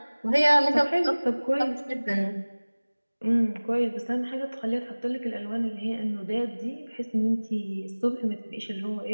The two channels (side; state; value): both; inverted; correlation -1.00